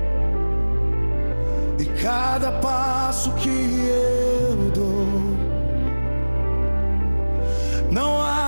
e cada passo que eu dou. Não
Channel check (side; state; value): both; inverted; correlation -1.00